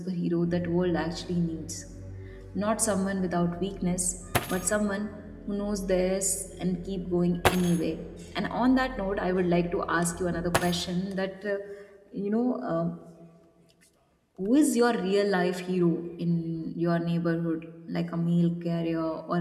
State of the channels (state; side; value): identical; both; correlation 1.00